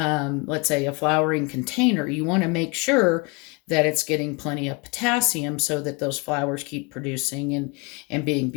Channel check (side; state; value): right; quieter; 28.9 dB